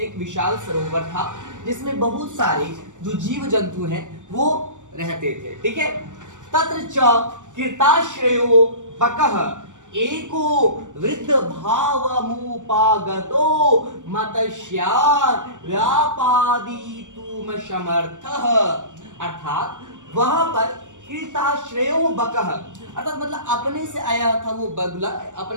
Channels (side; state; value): left; late; 0.86 ms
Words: एक विशाल सरोवर था जिसमें बहुत सारे जो जीव जंतु हैं वो रहते थे। ठीक है। तत्र च कृताश्रयो बकः एको वृद्ध भावमुपागतो मत्स्यान् व्यापादितुम समर्थः। अर्थात वहां पर कृताश्रयो बकः, अर्थात मतलब अपने से आया था वो बगुला,